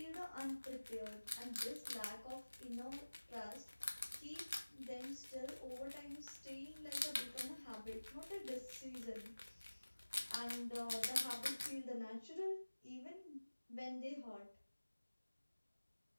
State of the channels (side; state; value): both; inverted; correlation -1.00